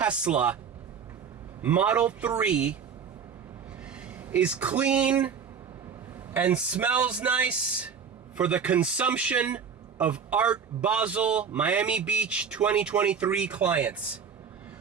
Model 3 is clean and smells nice for the consumption of Art Basel Miami Beach 2023 clients.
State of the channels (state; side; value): quieter; left; 6.7 dB